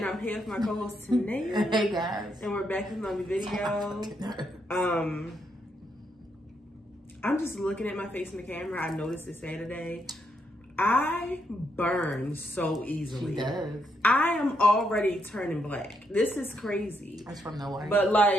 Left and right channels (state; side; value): normal; both; correlation 0.78